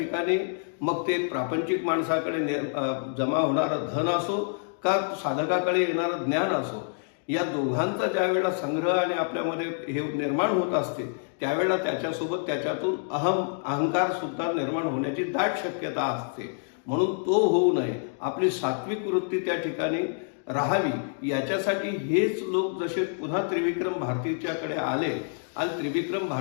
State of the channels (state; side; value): silent; right; 60 dB below the other